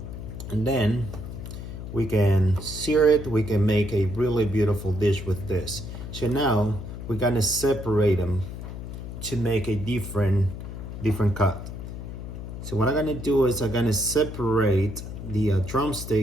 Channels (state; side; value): noise; left; hum, 9 dB below the sound